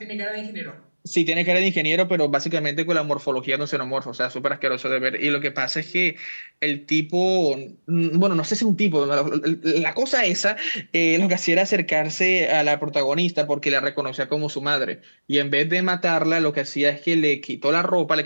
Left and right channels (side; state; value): both; inverted; correlation -1.00